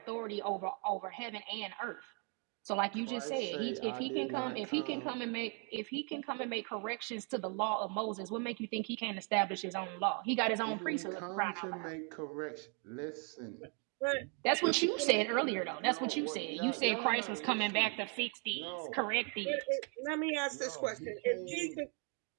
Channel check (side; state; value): left; quieter; 38.3 dB